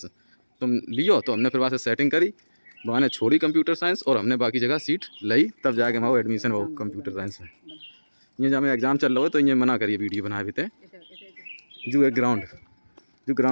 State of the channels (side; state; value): both; inverted; correlation -1.00